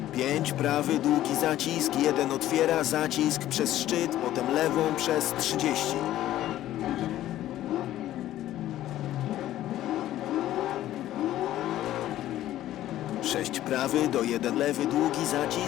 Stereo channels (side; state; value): right; quieter; 13.6 dB